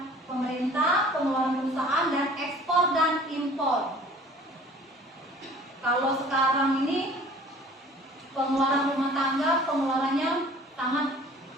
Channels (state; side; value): normal; both; correlation 0.49